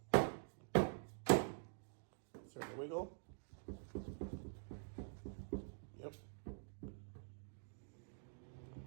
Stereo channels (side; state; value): left; silent; digital silence